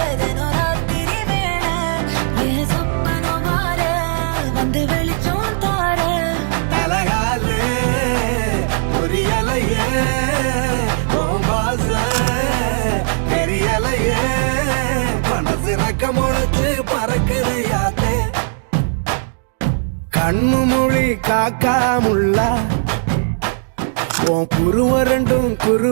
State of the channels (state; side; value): silent; left; digital silence